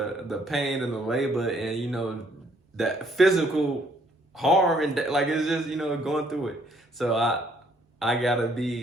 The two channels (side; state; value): both; normal; correlation 0.66